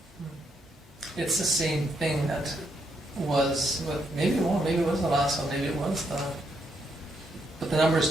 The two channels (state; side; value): normal; both; correlation 0.77